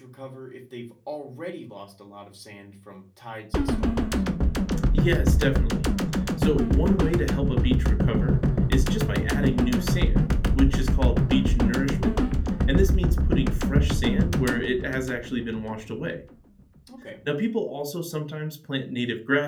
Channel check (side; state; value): both; identical; correlation 1.00